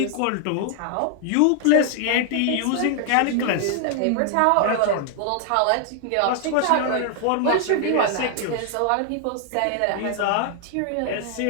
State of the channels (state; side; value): different; both; correlation 0.00